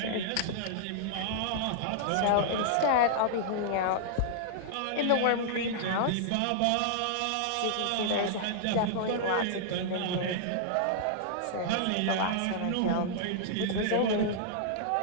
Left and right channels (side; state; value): both; different; correlation -0.01